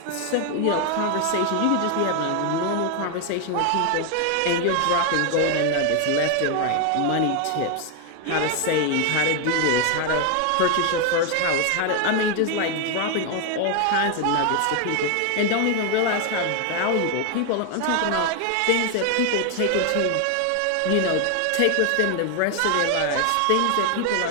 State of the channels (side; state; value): both; different; correlation 0.01